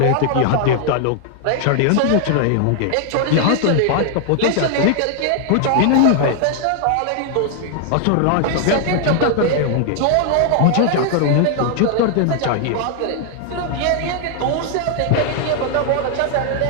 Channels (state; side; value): different; both; correlation 0.00